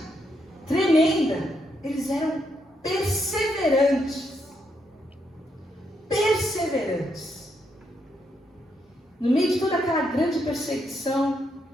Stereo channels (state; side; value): normal; both; correlation 0.78